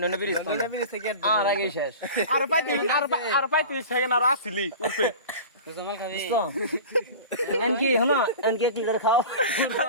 ব্রিজ ব্রিজ থেকে আর আগে শেষ আর 35 সেকেন্ড আর আসিলি উঠবে জমাল খাবি এনকি হলো এনকি ক্লিয়ার খাও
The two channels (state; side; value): inverted; both; correlation -0.35